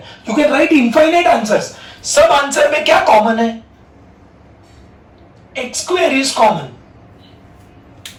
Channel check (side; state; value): both; identical; correlation 1.00